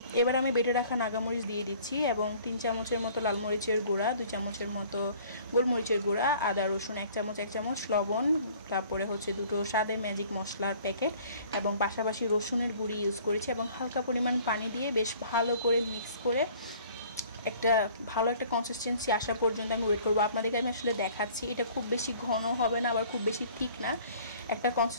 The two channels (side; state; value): both; inverted; correlation -0.53